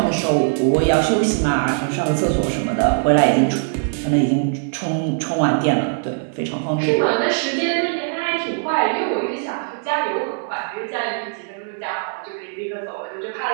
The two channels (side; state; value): left; silent; digital silence